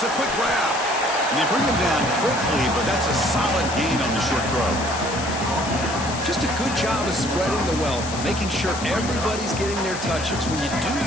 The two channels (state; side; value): noise; left; hiss, 10 dB below the sound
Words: a quick grab. And they bring him down quickly, but that's a solid gain on the short throw. Just a good job of spreading the wealth, making sure everybody's getting their touches. When you do